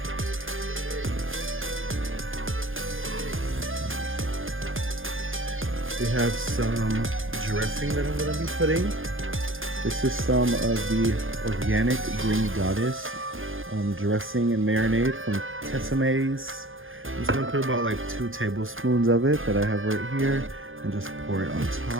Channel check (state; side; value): late; left; 0.59 ms